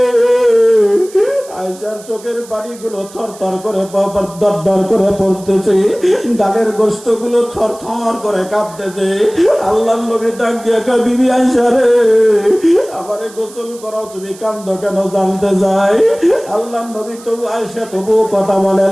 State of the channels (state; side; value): noise; right; hiss, 20 dB below the sound